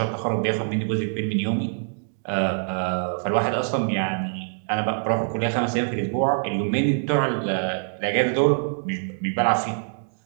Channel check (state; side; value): silent; left; digital silence